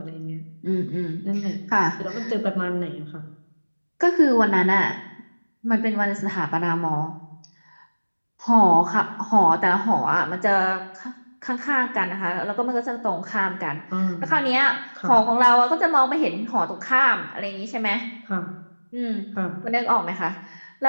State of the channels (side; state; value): both; inverted; correlation -1.00